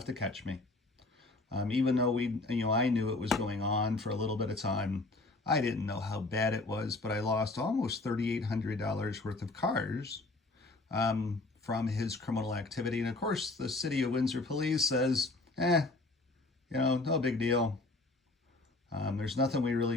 to catch me. Even though I knew it was going on for a little bit of time, I didn't know how bad it was, but I lost almost $3,800 worth of cars from his criminal activity. And of course, the City of Windsor Police says, no big deal. There's nothing we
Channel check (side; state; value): right; quieter; 3.1 dB